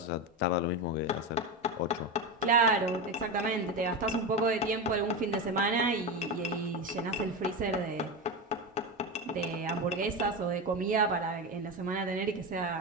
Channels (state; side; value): normal; both; correlation 0.18